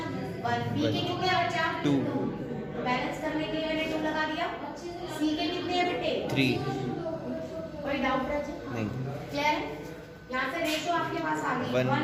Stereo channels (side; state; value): both; identical; correlation 1.00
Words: B के कितने हैं बच्चा? 2। बैलेंस करने के लिए मैंने 2 लगा दिया। C के कितने हैं बेटे? 3। कोई डाउट है? नहीं। क्लियर है? यहाँ से रेशो आपके पास आ गई